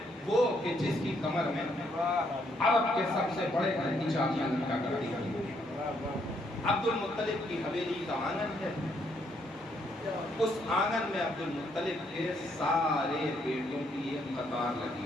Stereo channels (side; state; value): both; normal; correlation 0.72